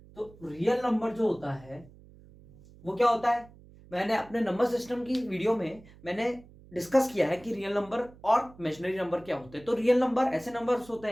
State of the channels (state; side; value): noise; right; hum, 23 dB below the sound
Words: तो रियल नंबर जो होता है वो क्या होता है? मैंने अपने नंबर सिस्टम की वीडियो में मैंने डिस्कस किया है कि रियल नंबर और इमेजिनरी नंबर क्या होते हैं। तो रियल नंबर ऐसे नंबर्स होते